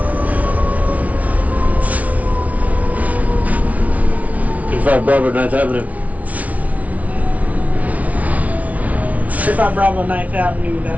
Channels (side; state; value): left; late; 0.069 ms